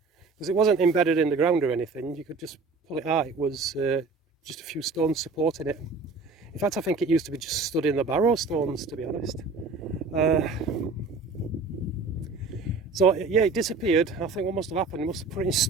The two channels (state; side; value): quieter; left; 4.1 dB